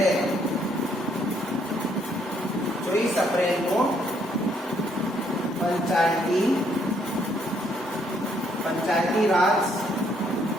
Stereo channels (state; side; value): normal; both; correlation 0.69